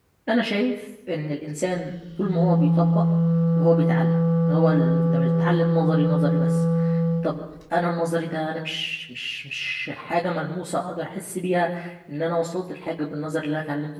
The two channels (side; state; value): both; identical; correlation 1.00